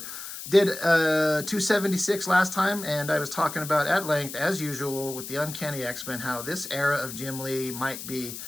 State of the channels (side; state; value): left; noise; hiss, 10 dB below the sound